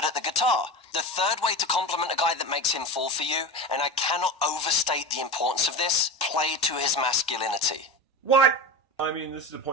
at the guitar. The third way to compliment a guy that makes him fall for you, and I cannot overstate the importance of this, play to his masculinity. What? I mean, this is the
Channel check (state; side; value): normal; both; correlation 0.26